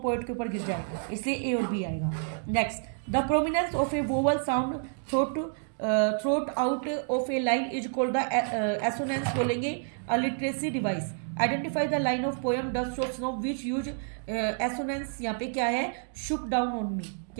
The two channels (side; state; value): left; silent; 58 dB below the other